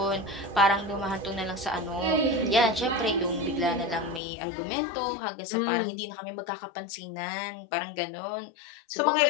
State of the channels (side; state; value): right; drops out; at 4.2 s